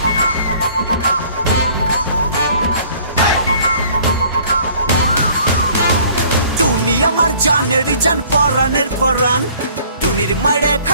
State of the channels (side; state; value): both; inverted; correlation -0.55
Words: টুনি আমার জানের জান পরানের পরান, টুনির মারে